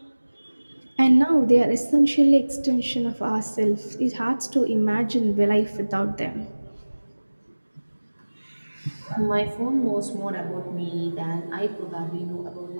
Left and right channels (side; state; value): both; inverted; correlation -1.00